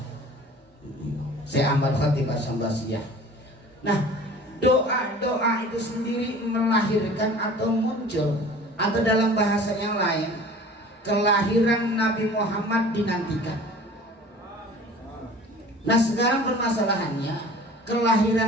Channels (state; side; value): normal; both; correlation 0.44